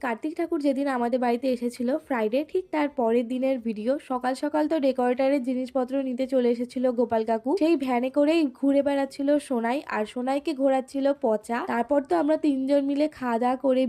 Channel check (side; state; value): both; identical; correlation 1.00